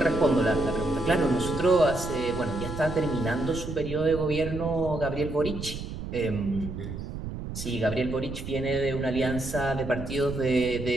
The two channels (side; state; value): right; noise; rumble, 8 dB below the sound